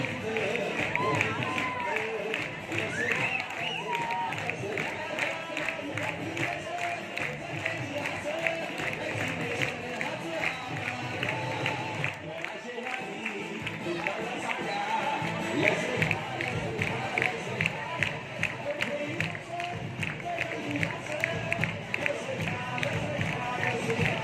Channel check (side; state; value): both; identical; correlation 1.00